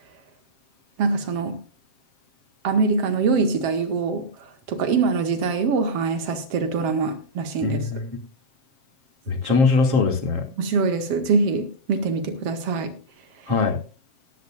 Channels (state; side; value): late; left; 7.5 ms